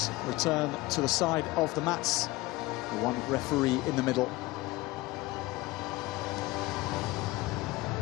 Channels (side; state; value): right; quieter; 20.0 dB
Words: return to the side of the mats. The 1 referee in the middle.